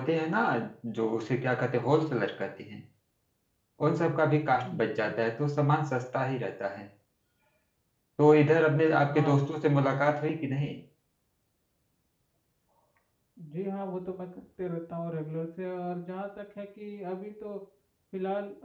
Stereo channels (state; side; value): identical; both; correlation 1.00